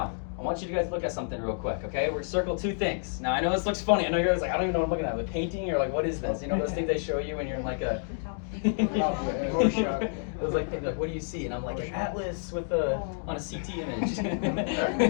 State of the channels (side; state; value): right; silent; digital silence